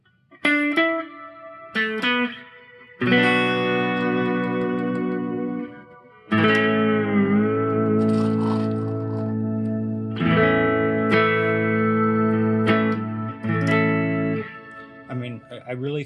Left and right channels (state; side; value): identical; both; correlation 1.00